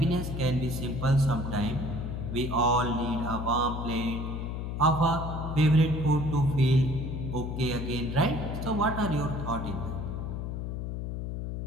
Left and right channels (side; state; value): left; noise; hum, 4 dB below the sound